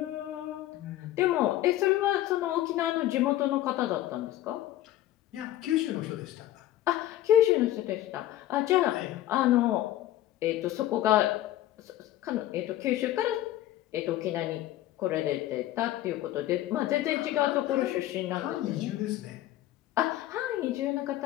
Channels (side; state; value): right; quieter; 14.0 dB